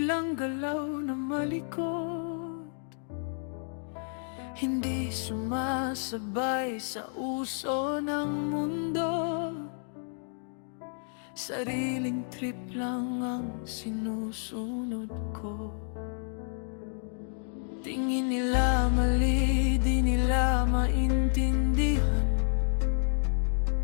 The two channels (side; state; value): right; silent; 58 dB below the other